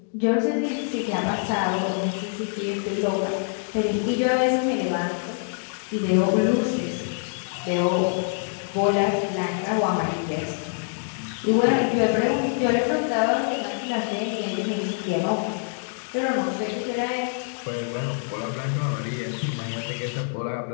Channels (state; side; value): silent; right; digital silence